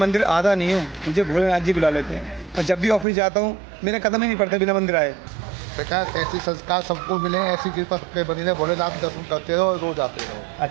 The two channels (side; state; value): left; drops out; at 3.1 s